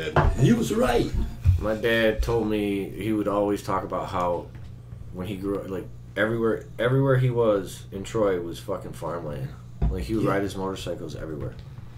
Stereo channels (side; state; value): both; identical; correlation 1.00